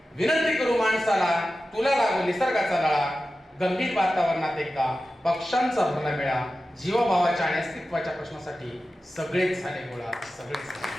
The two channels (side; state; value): both; normal; correlation 0.94